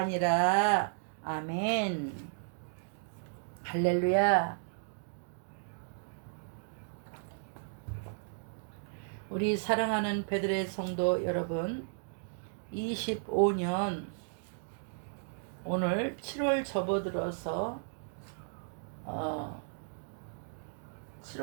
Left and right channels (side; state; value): left; silent; digital silence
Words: 아멘. 할렐루야. 우리 사랑하는 베들레 성도 여러분, 25년 오늘 7월 접어들어서